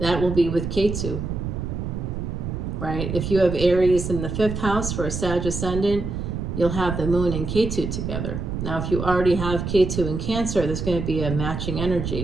will be with Ketu, right? If you have Aries in the 5th house for a Sag ascendant, you'll have the moon and Ketu together. Now, if you already have Ketu in Cancer, there's going to be a matching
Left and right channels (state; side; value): noise; right; rumble, 4 dB below the sound